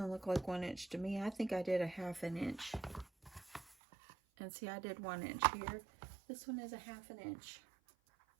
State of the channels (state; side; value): drops out; left; at 3.8 s